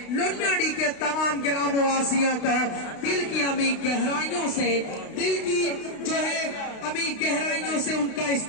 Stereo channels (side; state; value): right; late; 32 ms